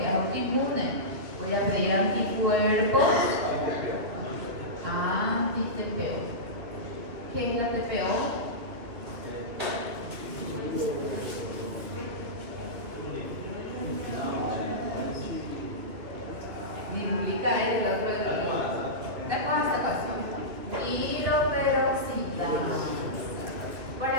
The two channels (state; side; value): late; left; 2.8 ms